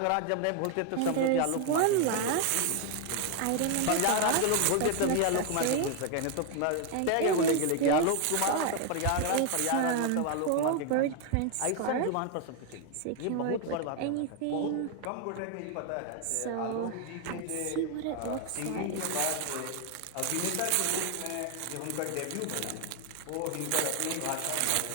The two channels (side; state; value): both; different; correlation 0.01